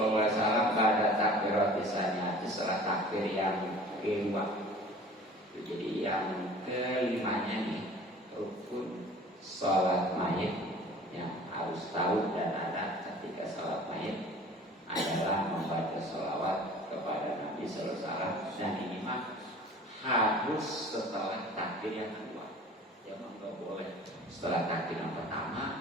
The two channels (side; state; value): both; normal; correlation 0.45